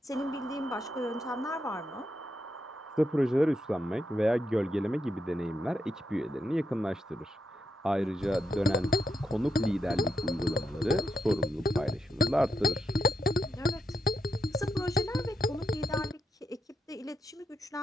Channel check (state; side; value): normal; both; correlation 0.82